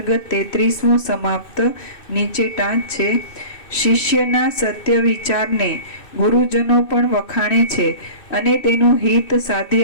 33મો સમાપ્ત નીચે ટાંચ છે. શિષ્યના સત્ય વિચારને ગુરુજનો પણ વખાણે છે અને તેનું હિત સાધી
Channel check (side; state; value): right; late; 2.6 ms